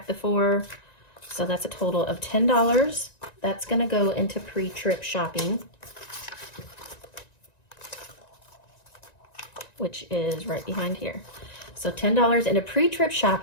the 4. So that's a total of $10. That's going to go into pre-trip shopping, which is right behind here. So $10 into pre-trip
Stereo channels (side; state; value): right; late; 1.9 ms